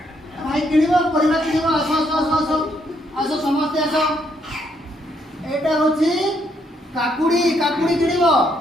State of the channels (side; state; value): both; normal; correlation 0.73